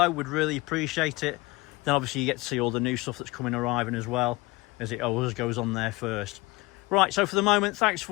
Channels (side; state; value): right; quieter; 22.8 dB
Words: we'd really appreciate it. Then obviously you get to see all the new stuff that's coming arriving as well, as it always goes on there first. Right, so for the moment, thanks for